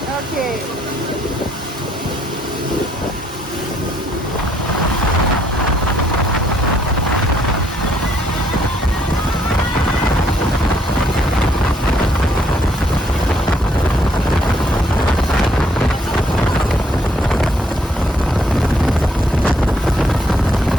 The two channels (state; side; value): normal; both; correlation 0.69